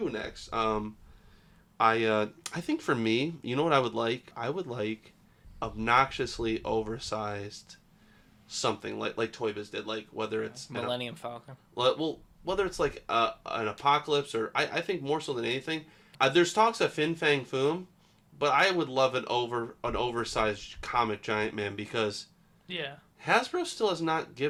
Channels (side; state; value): both; identical; correlation 1.00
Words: next. I think for me, you know what I would like? I would like obnoxiously oversized something like Toy Biz did, like whether it's Millennium Falcon. Well, whether it's like an Apocalypse, or I think more so than anything, there's talks of Fin Fang Foom, but I would love an oversized comic Giant Man, because Hasbro still has not